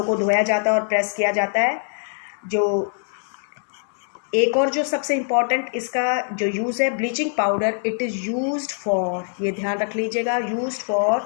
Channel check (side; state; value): right; silent; digital silence